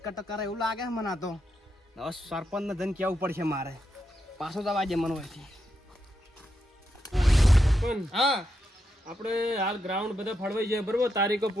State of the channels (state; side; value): normal; both; correlation 0.83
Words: કટ કરે એવું લાગે છે મને. આ તો હવે સરપંચ ને જઈને કેવું પડશે મારે. પાછો જવા દે મને હોયથી. હા આપણે હાલ ગ્રાઉન્ડ બધા ફળવાઈ જાય બરોબર. તારીખો